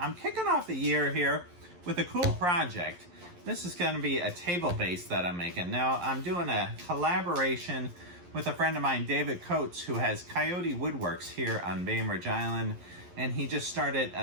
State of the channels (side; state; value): left; late; 11 ms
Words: kicking off the year here with a cool project. This is going to be a table base that I'm making. Now, I'm doing a collaboration with a friend of mine, David Coates, who has Coyote Woodworks here on Bainbridge Island, and he just started